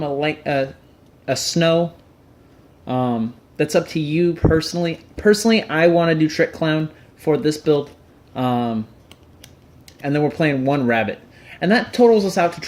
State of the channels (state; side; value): identical; both; correlation 1.00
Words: a snow. That's up to you personally. Personally, I want to do Trick Clown for this build. And then we're playing 1 rabbit. And that totals us out to